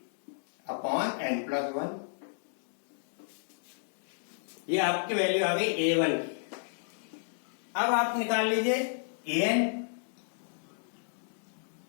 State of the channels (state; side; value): silent; right; digital silence